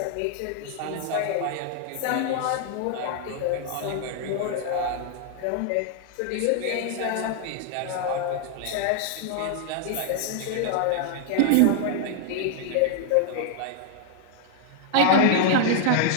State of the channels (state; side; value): different; both; correlation 0.00